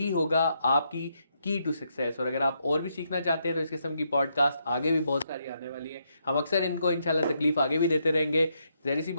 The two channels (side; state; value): both; inverted; correlation -0.78